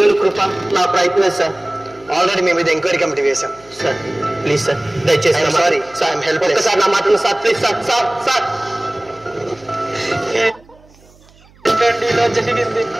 కృప, నా ప్రయత్నం సార్. ఆల్రెడీ మీ మీద ఎంక్వైరీ కమిటీ వేశాం. సార్ ప్లీజ్ సార్, దయచేసి సారీ సార్, ఐఎమ్ హెల్ప్లెస్. ఒక్కసారి నా మాటను sir please sir. Sir sir జరిగింది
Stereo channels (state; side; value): noise; right; hum, 28 dB below the sound